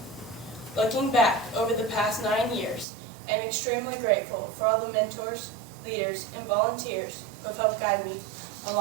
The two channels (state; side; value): drops out; left; at 2.9 s